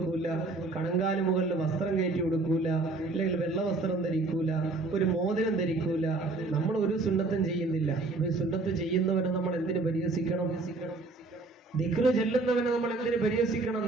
കണങ്കാല് മുകളിൽ വസ്ത്രം കയറ്റി കൊടുക്കൂല, അല്ലെങ്കിൽ വെള്ള വസ്ത്രം ധരിക്കൂല, ഒരു മോതിരം ധരിക്കൂല. നമ്മൾ ഒരു സുന്നത്തും ചെയ്യുന്നില്ല. ഒരു സുന്നത്ത് ചെയ്യുന്നവനെ നമ്മൾ എന്തിനു പരിഹസിക്കണം? ദിക്റ് ചെല്ലുന്നവനെ നമ്മൾ എന്തിനു പരിഹസിക്കണം?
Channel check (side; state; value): left; quieter; 3.4 dB